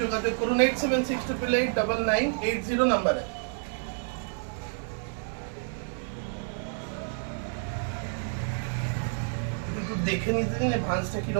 যোগাযোগ করুন 8768889980 নাম্বারে। একটু দেখে নিতে দিন ভাঁজটা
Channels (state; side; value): silent; left; 59 dB below the other